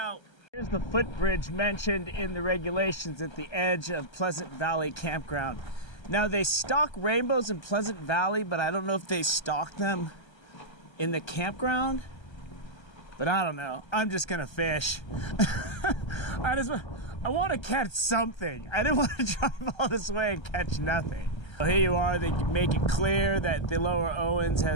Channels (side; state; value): right; late; 1.3 ms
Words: Here's the footbridge mentioned in the regulations at the edge of Pleasant Valley Campground. Now they stock rainbows in Pleasant Valley, but I don't know if they stock them in the campground. But I don't know. I'm just going to fish. I want to catch something. I didn't want to drive all this way and catch nothing. So here you are. They make it clear that the Lower Owens